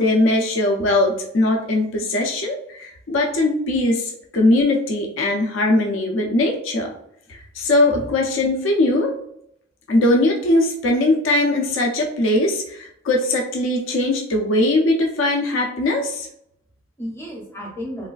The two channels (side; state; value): both; normal; correlation 0.38